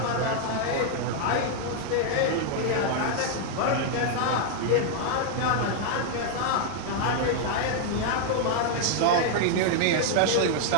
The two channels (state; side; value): different; both; correlation 0.00